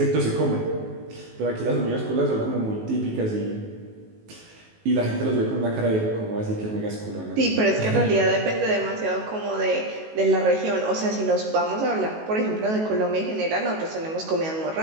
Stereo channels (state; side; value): late; left; 19 ms